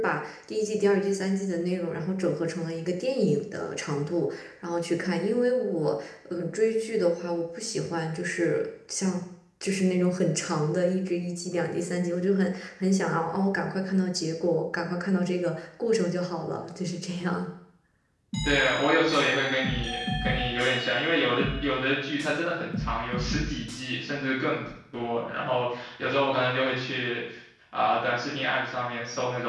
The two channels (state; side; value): identical; both; correlation 1.00